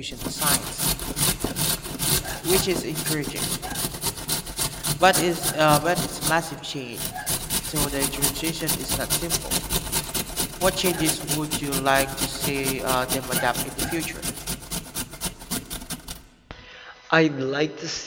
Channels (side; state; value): both; identical; correlation 1.00